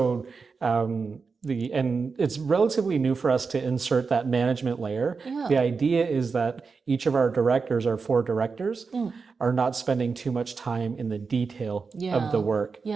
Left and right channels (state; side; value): quieter; left; 4.9 dB